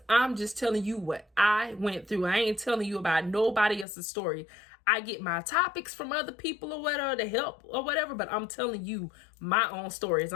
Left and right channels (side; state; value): right; drops out; at 3.9 s